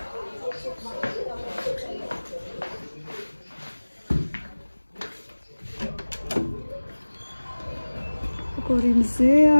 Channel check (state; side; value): inverted; both; correlation -1.00